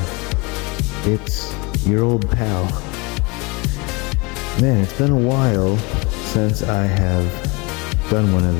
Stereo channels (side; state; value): right; quieter; 27.9 dB